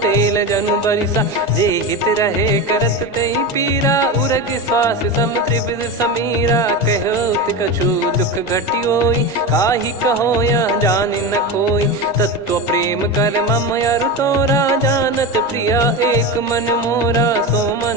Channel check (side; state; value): both; normal; correlation 0.21